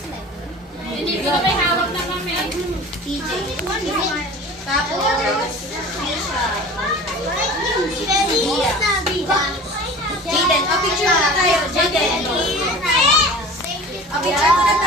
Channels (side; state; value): both; normal; correlation 0.39